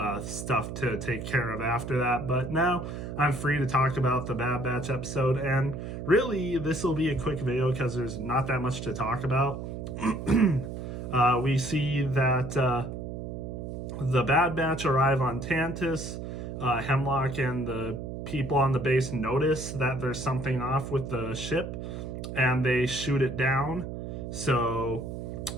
stuff to take care of after that. But now I'm free to talk about the Bad Batch episode, and really, this will be a quick video because there's not that much to talk about. We see that the Bad Batch arrive on Tantiss. Hemlock and the people on the base notice that there's something off with the ship, and they shoot it down. So,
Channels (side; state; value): right; noise; hum, 7 dB below the sound